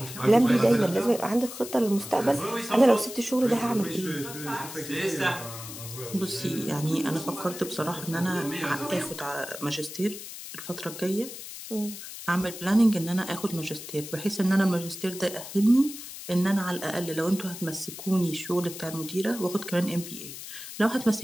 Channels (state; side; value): noise; left; hiss, 11 dB below the sound